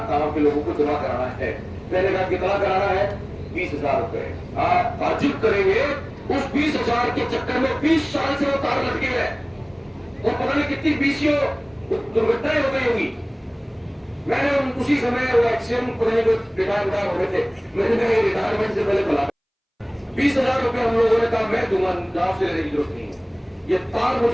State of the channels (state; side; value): identical; both; correlation 1.00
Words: गांव के लोगों को जमा कराना है। मैंने कहा कितना कराना है, 20,000 रुपए। आप ताजुब करेंगे, उस 20,000 के चक्कर में 20 साल से वो तार लटके है और पता नहीं कितनी बीसियों दुर्घटनाएं हो गई होगी। मैंने उसी समय वो एक्सीडेंट को रिटायर हो रहे थे, मैंने कहा रिटायरमेंट से पहले बुला 20,000 रुपए हम लोगों ने कहा मैं दूंगा, गांव से लेने की जरूरत नहीं है। ये तार